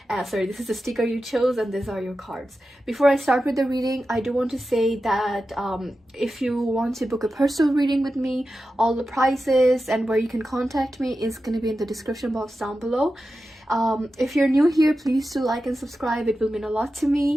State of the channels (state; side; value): normal; both; correlation 0.92